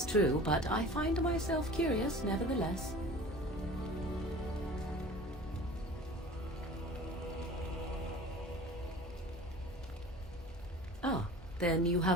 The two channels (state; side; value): normal; both; correlation 0.41